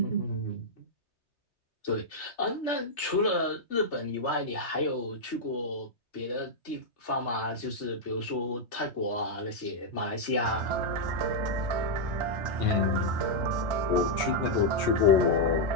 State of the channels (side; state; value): right; late; 3.3 ms